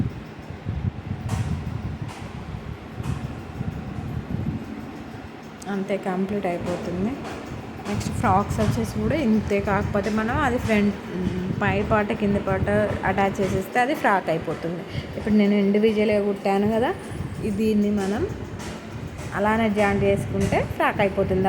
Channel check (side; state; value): both; identical; correlation 1.00